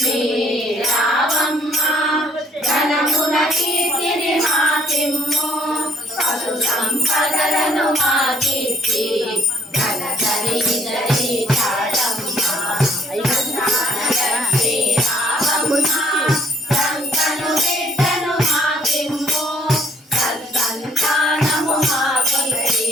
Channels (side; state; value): both; normal; correlation 0.64